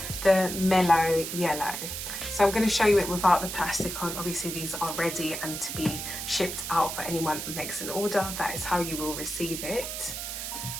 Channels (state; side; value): noise; right; hiss, 6 dB below the sound